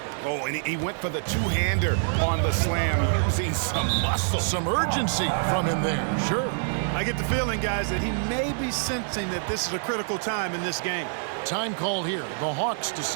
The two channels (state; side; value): silent; left; digital silence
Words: Oh, and he went for the two-hander on the slam, using some muscle. Some urgency from him there, sure. I get the feeling, guys, that he may be sensing that this is a critical time in this game. Time called here. The Hawks